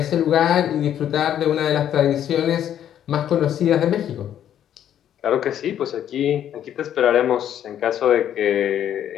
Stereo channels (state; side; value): quieter; right; 10.4 dB